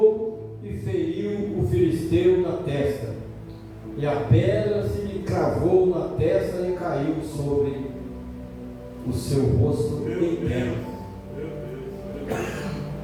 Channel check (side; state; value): both; identical; correlation 1.00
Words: e feriu o filisteu na testa. E a pedra se lhe cravou na testa e caiu sobre o seu rosto em terra.